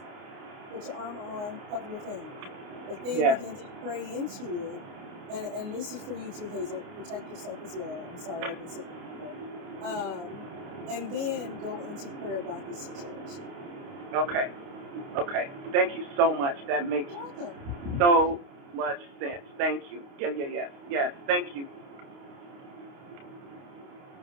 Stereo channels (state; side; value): late; left; 29 ms